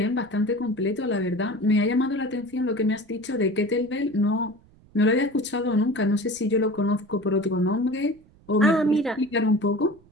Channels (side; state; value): right; noise; rumble, 28 dB below the sound